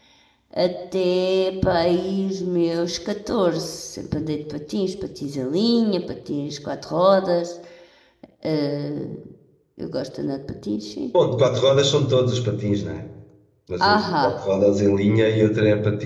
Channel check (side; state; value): both; identical; correlation 1.00